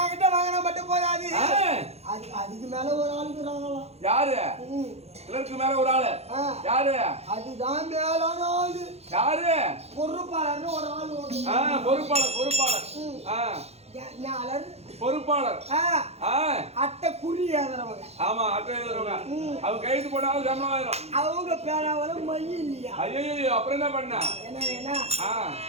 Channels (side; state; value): left; late; 0.31 ms